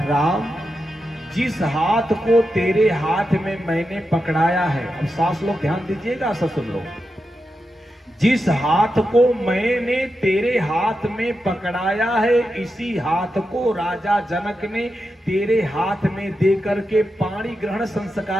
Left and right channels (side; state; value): both; normal; correlation 0.88